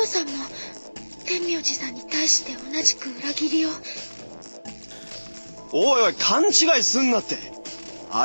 オさんも天明寺さんに対して同じく裏切りを。おいおい、勘違いすんなって。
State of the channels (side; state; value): both; inverted; correlation -1.00